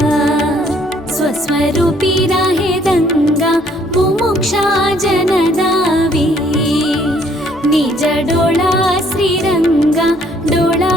स्वरूपी राहे दंगा मुमुक्षा जनदावी निज डोळा श्रीरंगा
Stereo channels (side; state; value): left; noise; hum, 26 dB below the sound